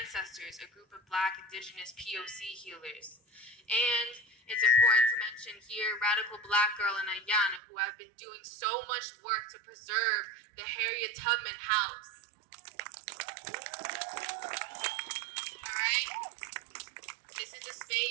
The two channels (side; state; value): left; drops out; at 7.6 s